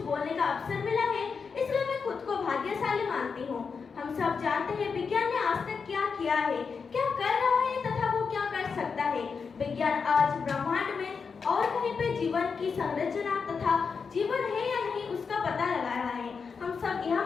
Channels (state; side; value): quieter; right; 5.5 dB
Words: बोलने का अवसर मिला है, इसलिए मैं खुद को भाग्यशाली मानती हूँ। हम सब जानते हैं विज्ञान ने आज तक क्या किया है, क्या कर रहा है तथा वो क्या कर सकता है। विज्ञान आज ब्रह्मांड में और कहीं पे जीवन की संरचना तथा जीवन है या नहीं उसका पता लगा रहा है। हम सब यह